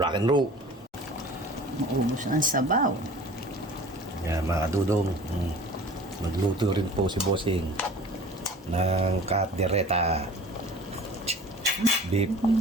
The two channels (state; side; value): normal; both; correlation 0.42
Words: and roll. Maubos ang sabaw. Yan mga dudong, magluto rin po si Bossing ng kaldereta beef.